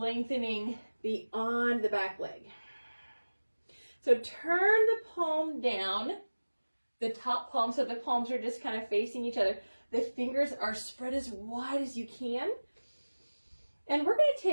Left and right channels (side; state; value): both; inverted; correlation -1.00